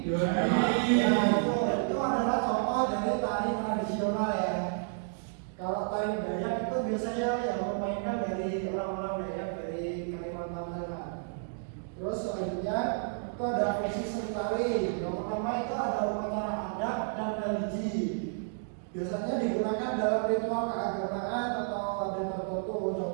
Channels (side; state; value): left; silent; digital silence